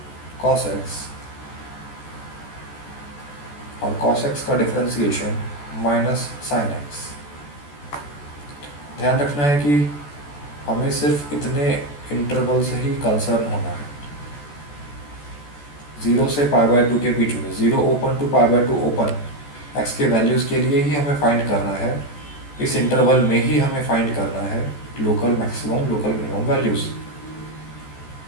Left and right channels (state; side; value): late; right; 14 ms